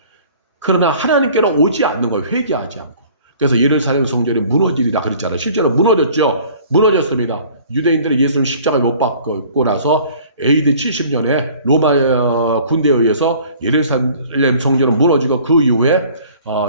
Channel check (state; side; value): inverted; both; correlation -0.51